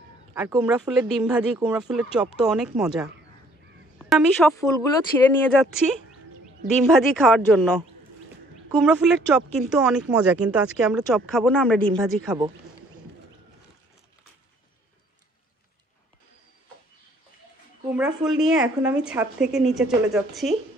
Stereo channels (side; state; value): both; normal; correlation 0.60